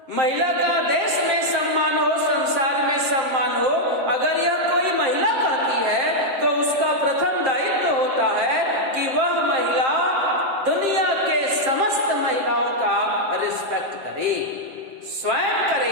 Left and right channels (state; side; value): late; left; 7.6 ms